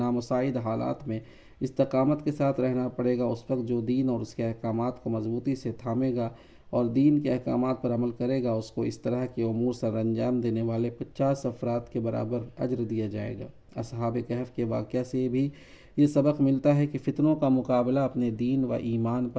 حالات میں استقامت کے ساتھ رہنا پڑے گا۔ اس وقت جو دین اور اس کے احکامات کو مضبوطی سے تھامے گا اور دین کے احکامات پر عمل کرے گا اس کو اس طرح کے امور سر انجام دینے والے 50 افراد کے برابر اجر دیا جائے گا۔ اصحاب کہف کے واقعہ سے بھی یہ سبق ملتا ہے کہ فتنوں کا مقابلہ اپنے دین و ایمان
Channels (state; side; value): identical; both; correlation 1.00